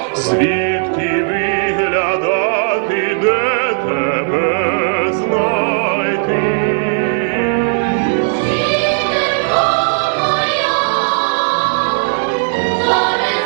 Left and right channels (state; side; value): silent; left; digital silence